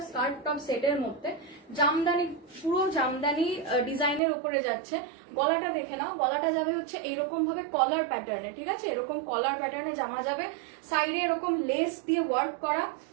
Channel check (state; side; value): drops out; left; at 4.2 s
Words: স্কার্ট টপ সেটের মধ্যে, জামদানি, পুরো জামদানি ডিজাইনের উপরে যাচ্ছে। গলাটা দেখে নাও, গলাটা যাবে হচ্ছে এইরকম ভাবে কলার প্যাটার্নে, ঠিক আছে? এরকম কলার প্যাটার্নে জামা যাবে, সাইডে এরকম লেস দিয়ে ওয়ার্ক করা,